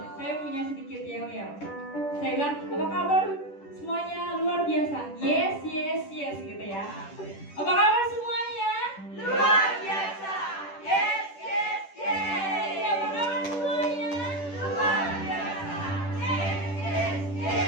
Saya punya sedikit yel-yel. Saya bilang, apa kabar semuanya? Luar biasa. Yes, yes, yes gitu ya. Apa kabar semuanya? Luar biasa. Yes, yes, yes. Apa kabar semuanya? Luar biasa. Yes, yes,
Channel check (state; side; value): late; right; 10 ms